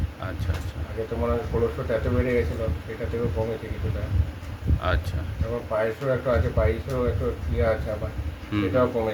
আচ্ছা, আচ্ছা, আগে তো মানে কোলেস্ট্রলটা এত বেড়ে গেছিলো, সেটা থেকেও কমেছে কিছুটা। আচ্ছা, তারপর পায়েসও একটু আছে, পায়েসও একটু ইয়ে আছে আমার, হুম, হুম, সেটাও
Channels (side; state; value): both; identical; correlation 1.00